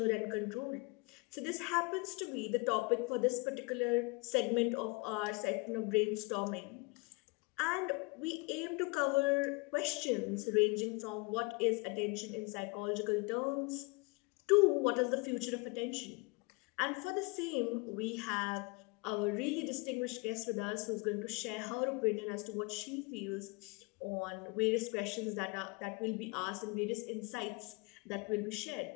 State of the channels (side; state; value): right; quieter; 28.3 dB